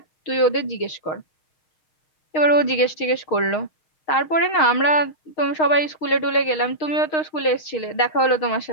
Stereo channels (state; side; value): late; right; 6.4 ms